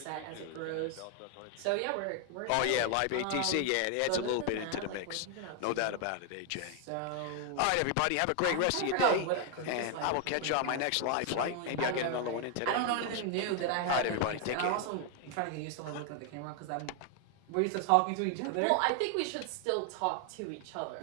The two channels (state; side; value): different; both; correlation 0.00